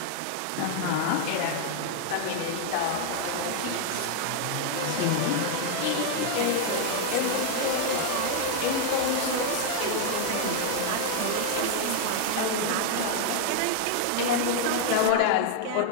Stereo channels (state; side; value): different; both; correlation 0.00